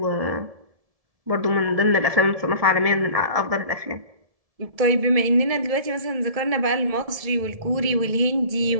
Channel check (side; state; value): left; late; 1.7 ms